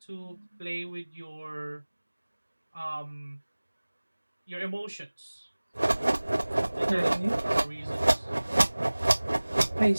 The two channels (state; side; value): inverted; both; correlation -1.00